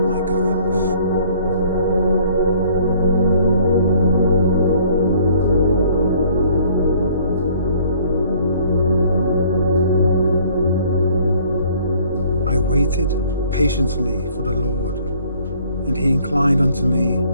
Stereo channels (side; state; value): both; inverted; correlation -0.58